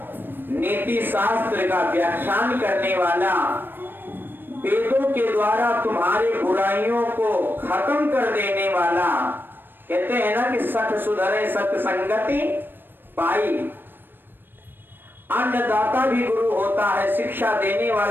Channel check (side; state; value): left; late; 0.096 ms